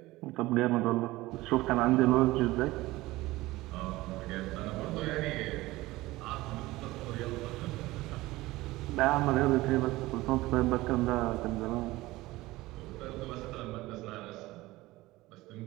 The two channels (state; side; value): quieter; left; 18.9 dB